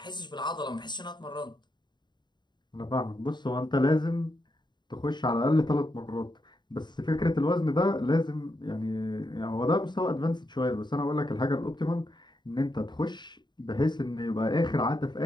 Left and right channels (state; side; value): late; right; 0.21 ms